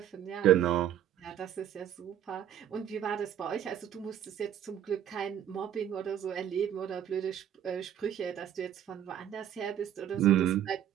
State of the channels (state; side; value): quieter; left; 10.2 dB